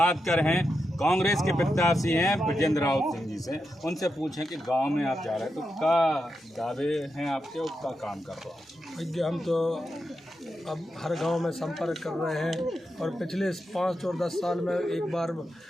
कर रहे हैं कांग्रेस के प्रत्याशी हैं ब्रजेंद्र राउत सिंह जी से। उनसे पूछें कि गांव में आप जा रहे हैं तो क्या दावे हैं आपके और क्या काम कर रहे हो? भैया हम तो अब हर गांव में संपर्क कर रहे हैं और पिछले 5 और 10 साल में एक बार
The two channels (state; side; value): normal; both; correlation 0.87